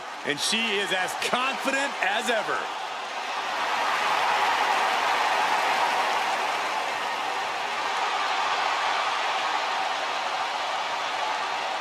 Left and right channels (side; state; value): both; identical; correlation 1.00